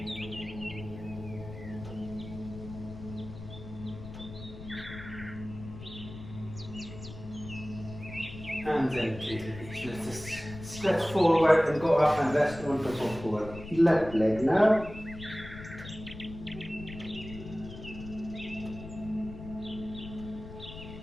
And gently release. Let's just stretch forward and go up and rest on top of our left leg now.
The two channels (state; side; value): noise; left; rumble, 13 dB below the sound